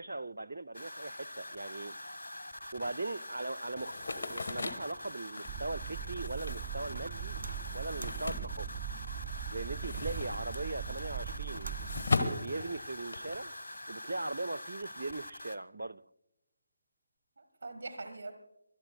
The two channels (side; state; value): both; inverted; correlation -0.77